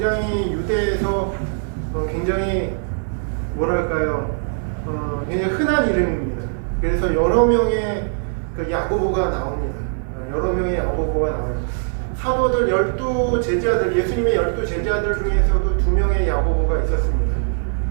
유대에서 굉장히 뭐랄까요, 굉장히 흔한 이름입니다. 그래서 여러 명의 그 야고보가 나옵니다. 여러 명의 야고보가 나와요. 사도들 12제자들, 예수님의 12제자들 중에서도 2명의 야고보가 있었습니다.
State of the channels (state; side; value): silent; left; 60 dB below the other